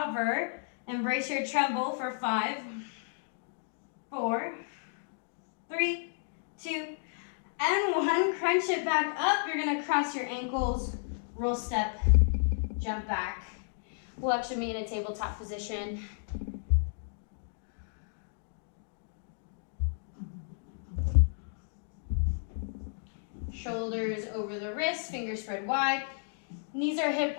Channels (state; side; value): silent; right; digital silence